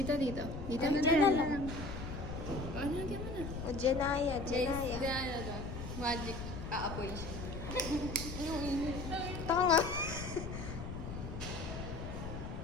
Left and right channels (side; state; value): left; noise; rumble, 7 dB below the sound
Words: Dito Diyan na lang. Ano lagyan mo na? O, Janaya, Janaya. Magic. Aapoy. Taka nga.